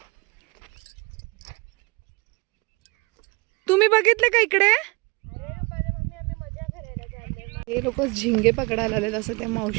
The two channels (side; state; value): left; quieter; 26.6 dB